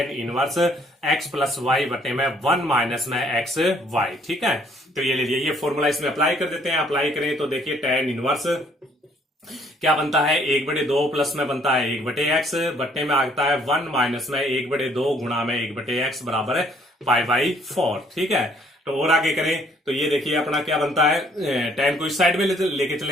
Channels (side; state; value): both; normal; correlation 0.63